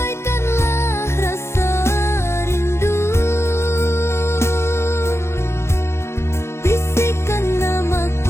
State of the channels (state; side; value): late; right; 0.13 ms